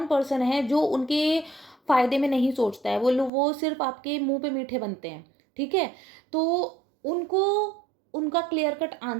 पर्सन है जो उनके फ़ायदे में नहीं सोचता है। वो सिर्फ़ आपके मुँह पे मीठे बनते हैं, ठीक है? तो उनको उनका क्लियर कट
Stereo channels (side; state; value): left; drops out; at 3.3 s